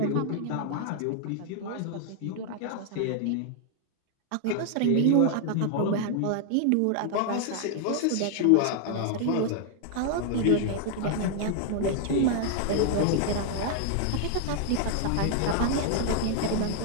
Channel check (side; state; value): both; different; correlation 0.00